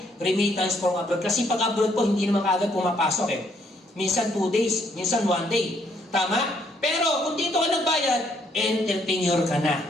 remittance from abroad. Kasi pag abroad po, hindi naman kaagad pumapasok eh. Minsan 2 days, minsan 1 day. Tama? Pero kung dito ka nagbayad, entrepreneur ka na.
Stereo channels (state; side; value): normal; both; correlation 0.70